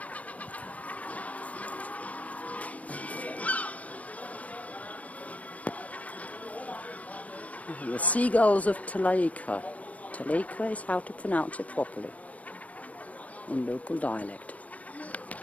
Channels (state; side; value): late; right; 0.070 ms